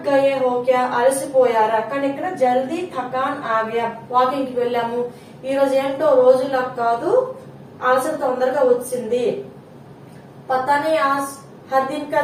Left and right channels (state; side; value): identical; both; correlation 1.00